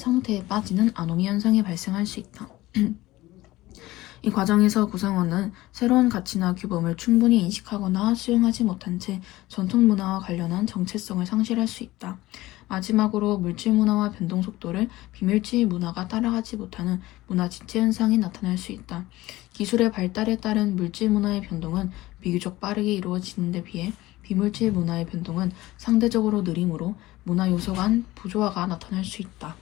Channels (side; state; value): right; quieter; 17.8 dB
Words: 빠지는 아노미 현상이 발생할 수 있다. 이 과정에서 구성원은 새로운 가치나 규범을 충분히 인식하거나 수용하지 못한 채 전통 문화와 관련한 정체성을 상실할 수 있다. 마지막으로 물질 문화와 변동 속도를 비물질 문화가 따라가지 못하는 문화 지체 현상이 나타날 수 있다. 기술의 발달에 따른 물질 문화의 변동은 비교적 빠르게 이루어지는 데 비해 비물질 문화의 변동은 상대적으로 느리므로 문화 요소 간 부조화가 나타날 수 있다.